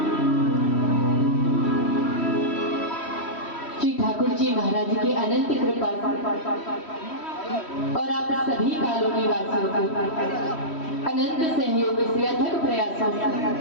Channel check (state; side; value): late; right; 3.1 ms